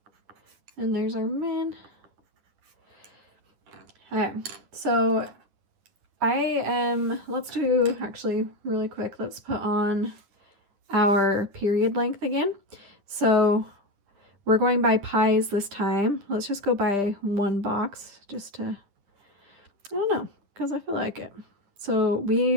and there's our min. Okay, so let's do, actually really quick, let's put on our period length again. So we're going by pies this time. Let's just go by 1 box just to, I don't know, because I feel like it. So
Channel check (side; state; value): left; late; 10 ms